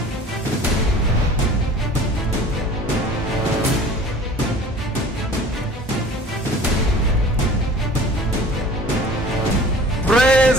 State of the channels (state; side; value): normal; both; correlation 0.45